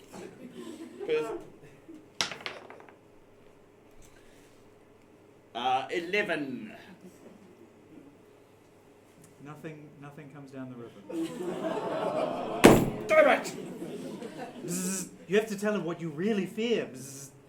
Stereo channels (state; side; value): identical; both; correlation 1.00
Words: 11. Nothing comes down the river. Damn it! Bzzz. You have to tell him what you really fear. Bzzz.